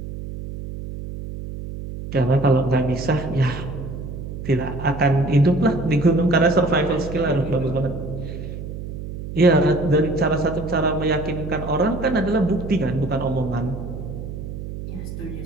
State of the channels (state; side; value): noise; right; hum, 9 dB below the sound